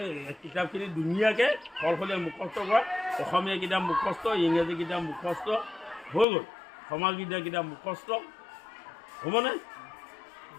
কিতাপখিনি ধুনীয়াকৈ সলসলীয়া মুখস্থ কৰা অসমীয়া কিতাপ মুখস্থ ইংৰাজী কিতাপ মুখস্থ হৈ গ'ল সমাজবিদ্যা কিতাপ মুখস্থ হ'বনে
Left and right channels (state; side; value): drops out; right; at 6.2 s